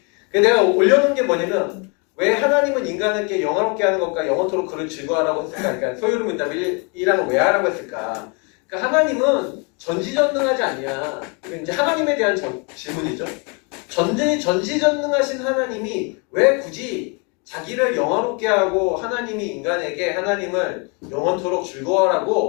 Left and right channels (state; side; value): quieter; right; 33.4 dB